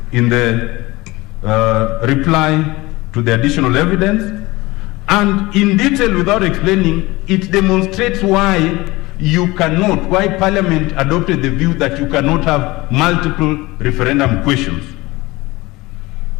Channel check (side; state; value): right; quieter; 21.1 dB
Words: in the reply to the additional evidence. And in detail, without explaining, it demonstrates why you cannot, why Parliament adopted the view that you cannot have multiple referendum questions.